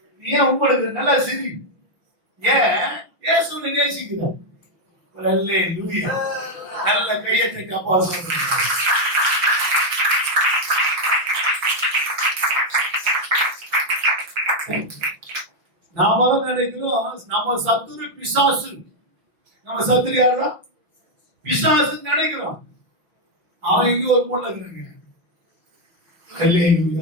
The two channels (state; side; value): late; left; 6.0 ms